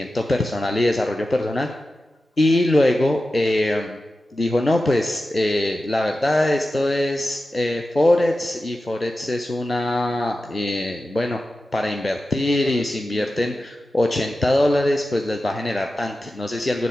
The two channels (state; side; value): normal; both; correlation 0.93